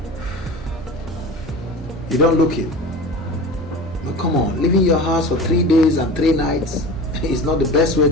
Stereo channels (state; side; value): normal; both; correlation 0.34